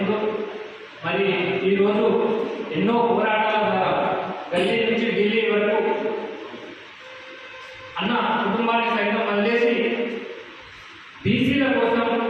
మరి ఈరోజు ఎన్నో పోరాటాల ద్వారా గల్లీ నుంచి ఢిల్లీ వరకు అన్న కుటుంబాన్ని సైతం వదిలేసి బీసీల కోసం,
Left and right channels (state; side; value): identical; both; correlation 1.00